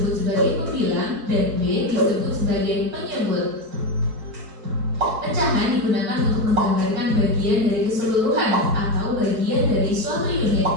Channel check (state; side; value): late; left; 4.6 ms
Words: sebagai pembilang dan B disebut sebagai penyebut. Pecahan digunakan untuk menggambarkan bagian dari keseluruhan atau bagian dari suatu unit.